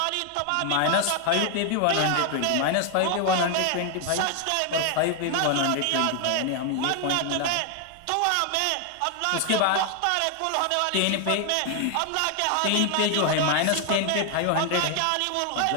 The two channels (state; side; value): different; both; correlation 0.00